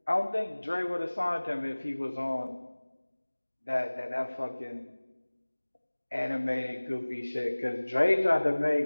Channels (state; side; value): inverted; both; correlation -1.00